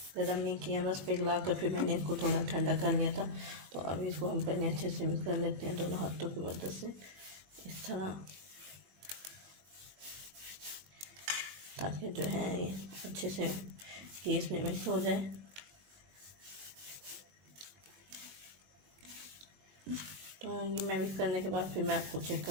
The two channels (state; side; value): late; left; 21 ms